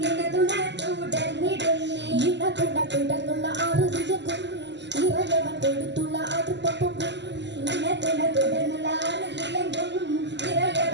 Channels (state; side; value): late; left; 0.51 ms